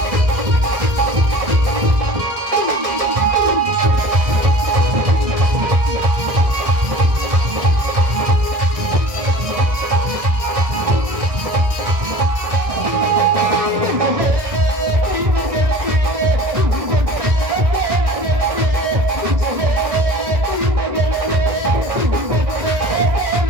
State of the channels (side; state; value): left; late; 1.5 ms